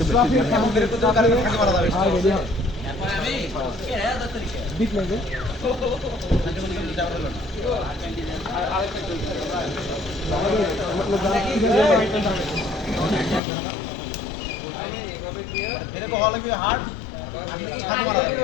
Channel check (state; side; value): drops out; right; at 13.4 s